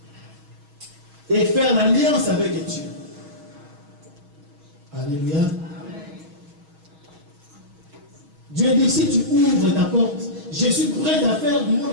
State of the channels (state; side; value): late; left; 6.3 ms